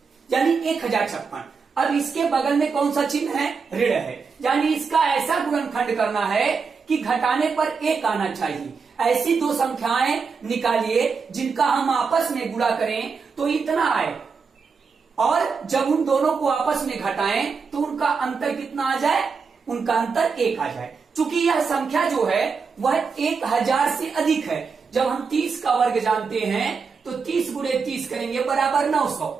यानी 1056। अब इसके बगल में कौन सा चिन्ह है, ऋण है, यानी इसका ऐसा गुणनखंड करना है कि घटाने पर एक आना चाहिए। ऐसी दो संख्याएं निकालिए जिनका हम आपस में गुणा करें तो इतना आए, और जब उन दोनों को आपस में घटाएं तो उनका अंतर कितना आ जाए, उनका अंतर 1 आ जाए। चूंकि यह संख्या जो है वह 1000 से अधिक है। जब हम 30 का वर्ग जानते हैं तो 30 गुणे 30 करेंगे बराबर 900,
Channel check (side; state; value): left; quieter; 5.3 dB